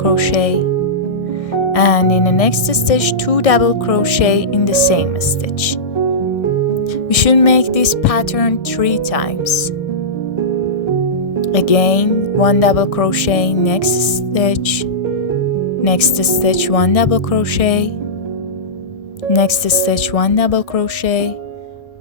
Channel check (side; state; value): right; late; 1.6 ms